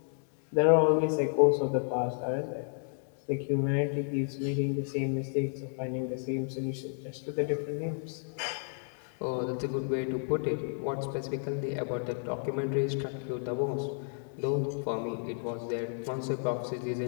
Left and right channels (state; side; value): silent; right; 57 dB below the other